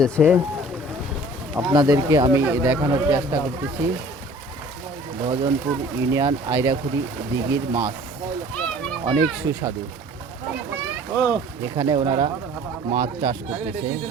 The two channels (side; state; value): both; normal; correlation 0.49